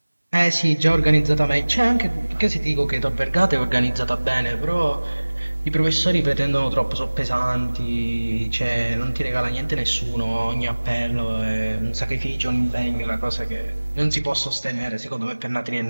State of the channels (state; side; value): inverted; both; correlation -1.00